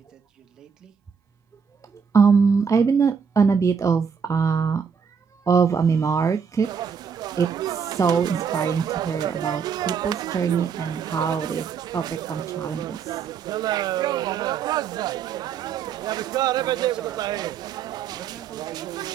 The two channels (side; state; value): left; quieter; 6.4 dB